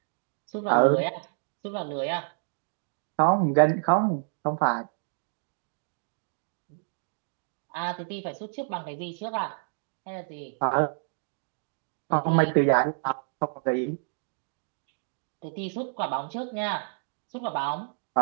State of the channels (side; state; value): left; silent; digital silence